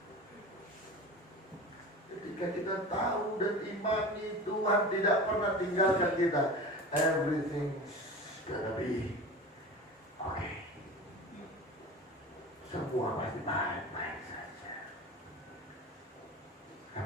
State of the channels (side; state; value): both; normal; correlation 0.33